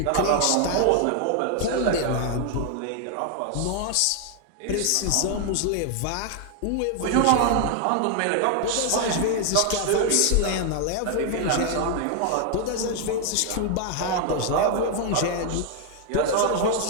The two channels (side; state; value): both; different; correlation 0.00